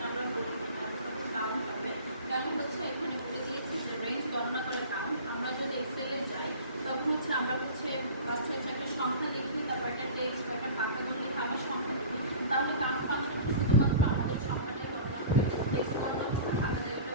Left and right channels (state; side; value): inverted; both; correlation -0.39